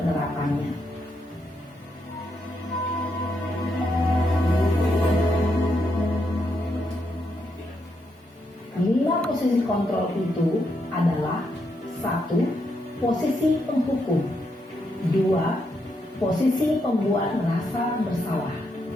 Lima posisi kontrol itu adalah 1. Posisi penghukum. 2. Posisi pembuat merasa bersalah.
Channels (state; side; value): normal; both; correlation 0.80